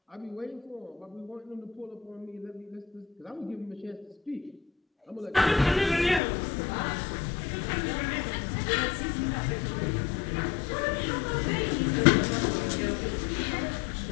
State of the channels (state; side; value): drops out; right; at 6.2 s